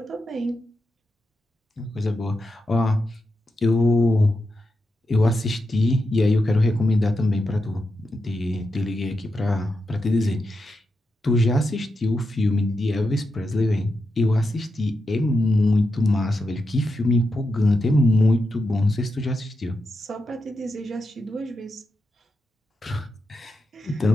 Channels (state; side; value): normal; both; correlation 0.87